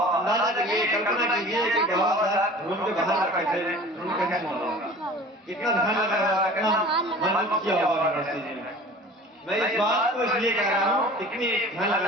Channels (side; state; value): both; normal; correlation 0.42